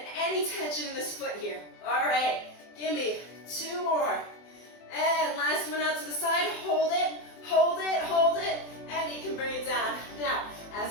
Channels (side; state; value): right; late; 24 ms